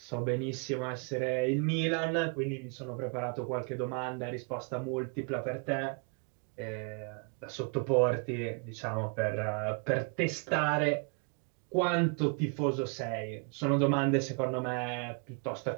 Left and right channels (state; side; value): quieter; left; 37.7 dB